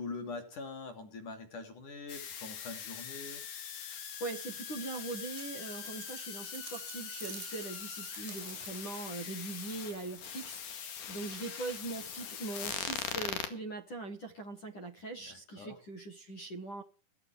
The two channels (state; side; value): late; right; 10 ms